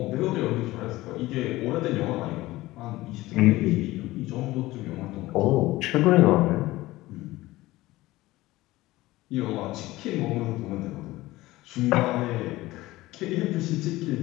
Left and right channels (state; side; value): quieter; right; 18.2 dB